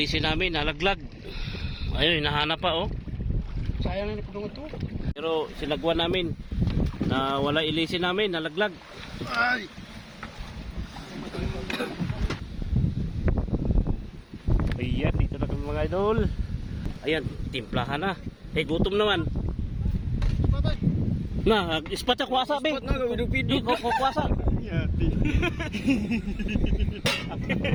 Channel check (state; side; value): identical; both; correlation 1.00